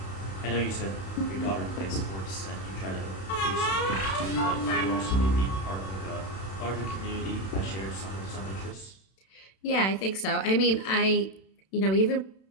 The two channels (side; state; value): right; late; 31 ms